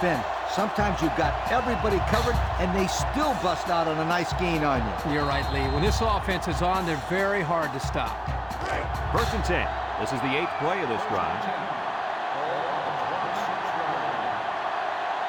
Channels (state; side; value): identical; both; correlation 1.00